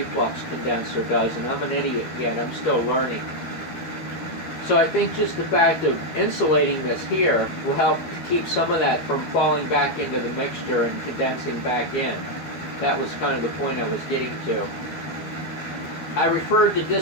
condenser does, and I'm an idiot yet, I'm still learning. So I think just the fact of insulating this here will help keep some of that from falling back into the mixture and condensing back in. That was kind of the point I was getting to. I referred to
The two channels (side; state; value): right; late; 12 ms